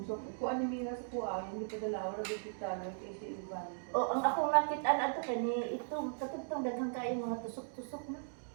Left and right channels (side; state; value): left; silent; digital silence